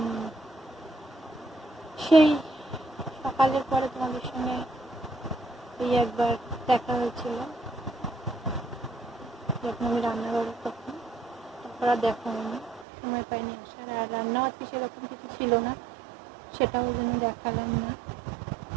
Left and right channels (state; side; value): drops out; left; at 12.9 s